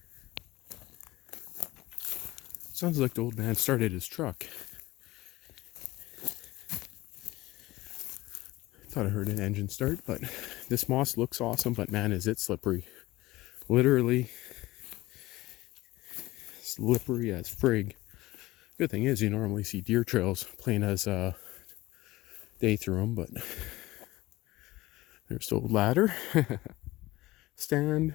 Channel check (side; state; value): right; quieter; 18.4 dB